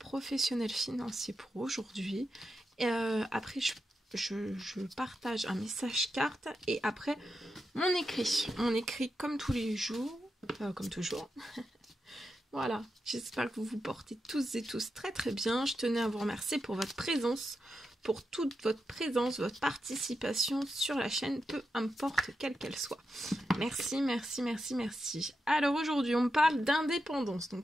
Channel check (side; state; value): both; normal; correlation 0.87